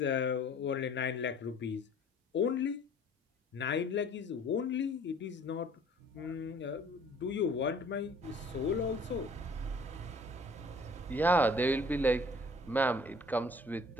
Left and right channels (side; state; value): both; normal; correlation 0.53